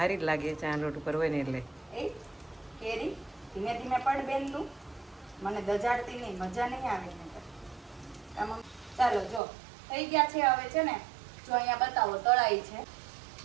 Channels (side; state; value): left; drops out; at 9.4 s